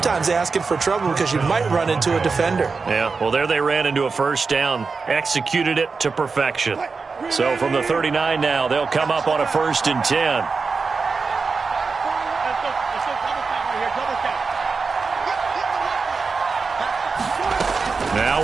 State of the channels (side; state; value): left; quieter; 4.6 dB